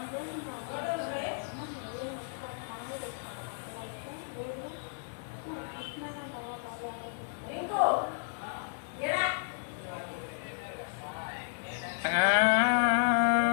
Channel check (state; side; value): silent; right; digital silence